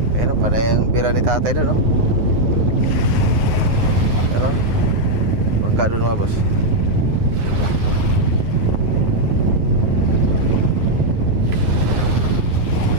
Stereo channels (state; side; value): late; left; 9.7 ms